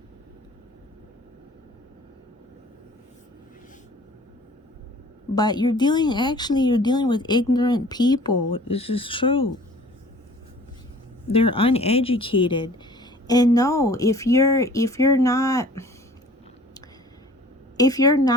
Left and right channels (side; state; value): both; normal; correlation 0.49